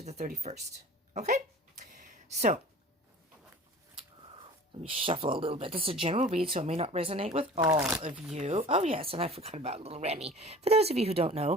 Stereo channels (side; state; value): both; normal; correlation 0.42